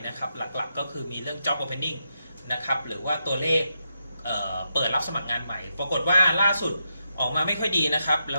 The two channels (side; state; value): both; inverted; correlation -0.84